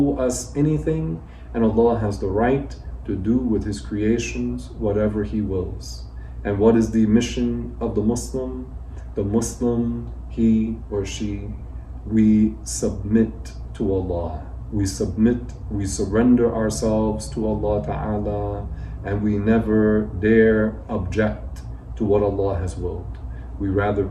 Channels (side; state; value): both; identical; correlation 1.00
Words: us anything, and Allah has the right to do with His creations whatever He wills. And what is the mission of the Muslim? The Muslim, he or she, we submit to Allah. We submit, we surrender ourselves to Allah Ta'ala, and we never dare object to what Allah has willed.